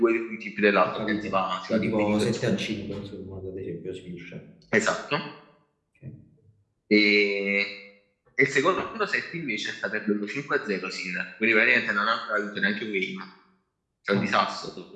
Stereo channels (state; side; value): identical; both; correlation 1.00